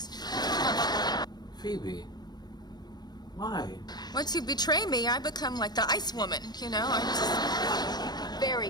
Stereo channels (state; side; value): late; right; 0.20 ms